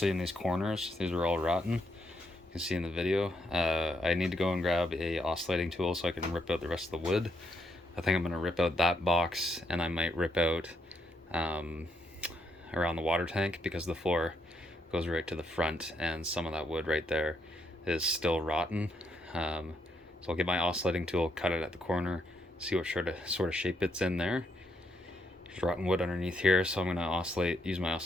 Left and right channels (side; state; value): both; normal; correlation 0.77